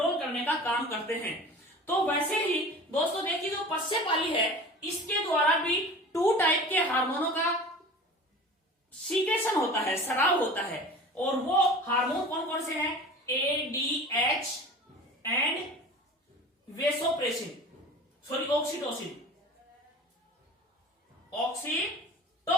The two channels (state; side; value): normal; both; correlation 0.39